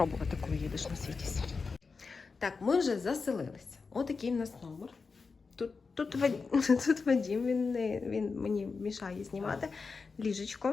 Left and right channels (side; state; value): right; quieter; 4.7 dB